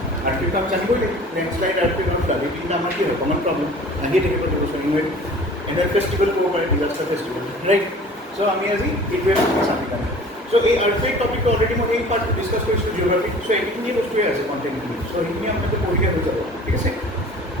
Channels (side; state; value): both; normal; correlation 0.45